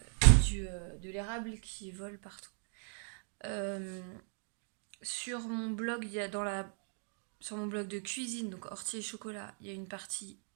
l'érable qui volent partout. Sur mon blog, il y a sur mon blog de cuisine, donc ortie et chocolat, il y a une partie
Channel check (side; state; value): left; silent; 53 dB below the other